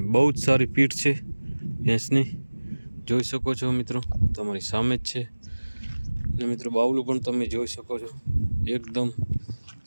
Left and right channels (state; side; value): inverted; both; correlation -1.00